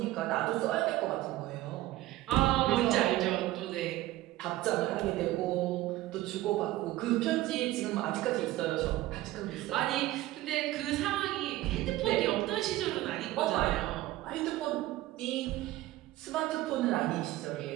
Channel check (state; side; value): quieter; left; 16.4 dB